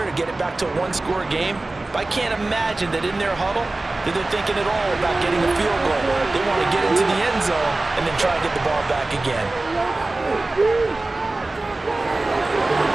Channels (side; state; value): left; quieter; 3.0 dB